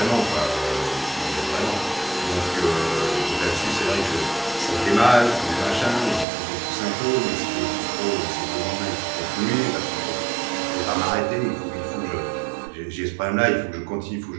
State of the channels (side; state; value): left; drops out; at 6.2 s